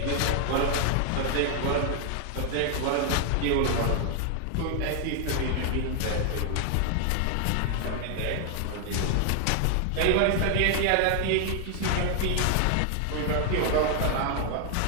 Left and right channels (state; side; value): different; both; correlation 0.00